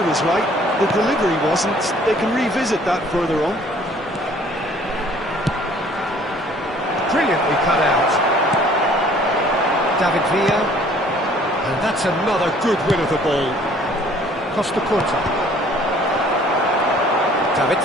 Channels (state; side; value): normal; both; correlation 0.56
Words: was right, the delivery wasn't. They can revisit that further on. Brilliantly cut out. David Villa, and that's another good win of the ball. Costa Curta. David